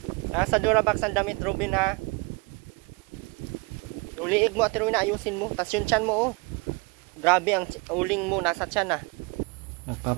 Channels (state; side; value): quieter; left; 27.7 dB